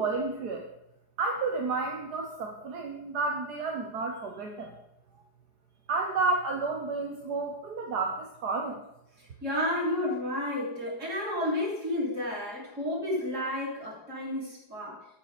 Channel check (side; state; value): left; late; 4.8 ms